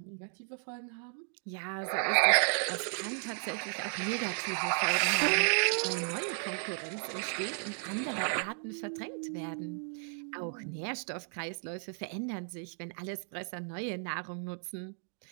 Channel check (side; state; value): left; silent; 55 dB below the other